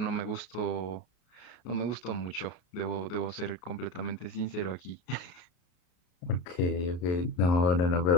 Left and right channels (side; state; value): right; late; 33 ms